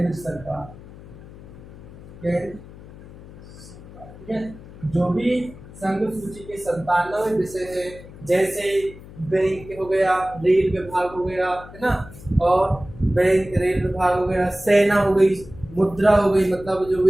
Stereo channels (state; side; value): noise; left; hum, 18 dB below the sound